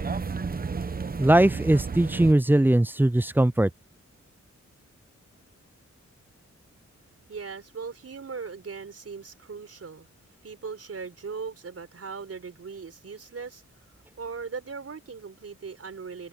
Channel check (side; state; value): both; normal; correlation 0.91